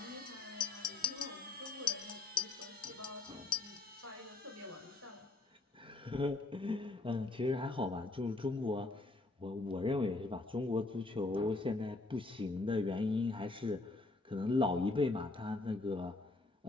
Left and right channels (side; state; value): right; quieter; 3.2 dB